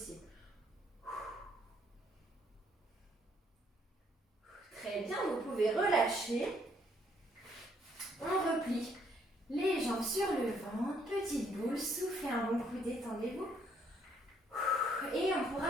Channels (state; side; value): normal; both; correlation 0.68